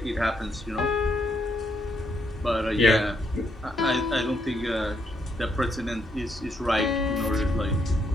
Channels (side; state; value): both; normal; correlation 0.75